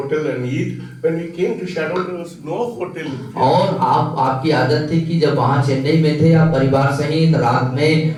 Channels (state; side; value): identical; both; correlation 1.00